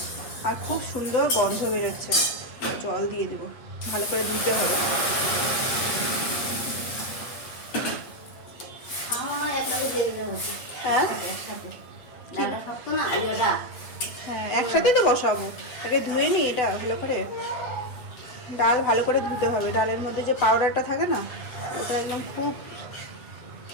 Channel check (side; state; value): right; late; 8.4 ms